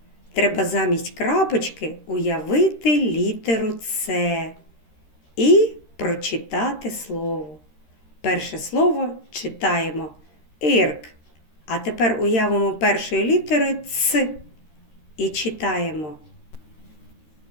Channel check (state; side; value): late; right; 13 ms